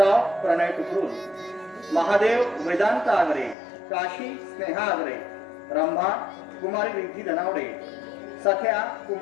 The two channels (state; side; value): drops out; right; at 3.6 s